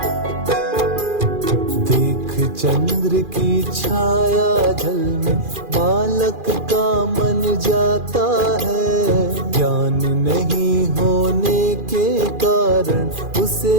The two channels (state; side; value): late; left; 2.4 ms